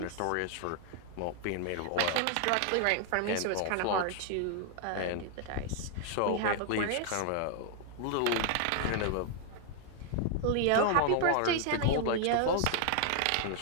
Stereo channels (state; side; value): different; both; correlation 0.00